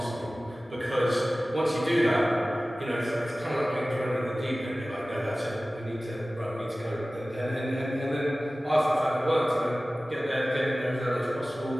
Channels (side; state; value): both; normal; correlation 0.97